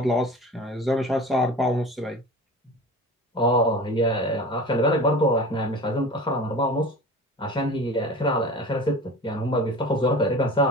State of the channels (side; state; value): both; normal; correlation 0.36